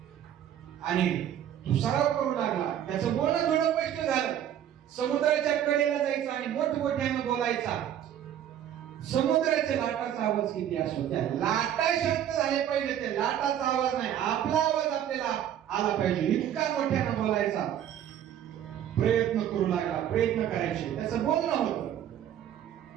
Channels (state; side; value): quieter; left; 10.5 dB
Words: आणि तो सराव करू लागला, त्याचं बोलणं थोडं स्पष्ट झालं, समुद्राच्या कडेला जायचा आणि मोठमोठ्यानं बोलायचा. समुद्राच्या लाटाचा आवाज किती असतो, त्या लाटा शांत झाले पाहिजे, त्या लाटाचा आवाज नाही, आपला आवाज आपल्याला आला पाहिजे, इतका मोठ्यानं बोलायचा. प्रयत्न करू लागला, प्रयत्न करायचे, त्याचं बोलणं होतं,